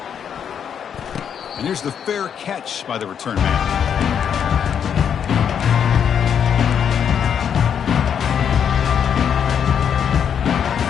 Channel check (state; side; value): quieter; right; 8.1 dB